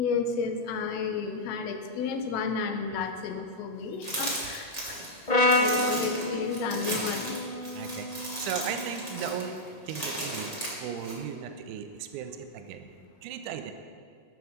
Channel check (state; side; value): late; right; 1.8 ms